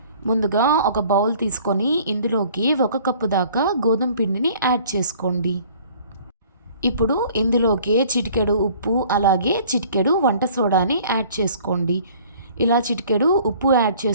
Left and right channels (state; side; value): inverted; both; correlation -0.53